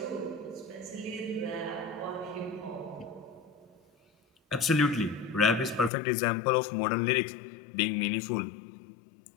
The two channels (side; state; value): right; drops out; at 5.9 s